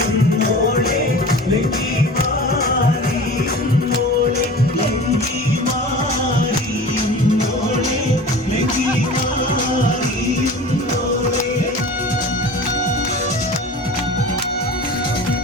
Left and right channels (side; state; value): both; normal; correlation 0.38